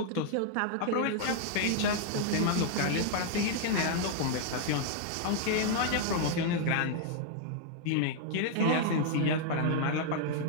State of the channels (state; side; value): different; both; correlation -0.01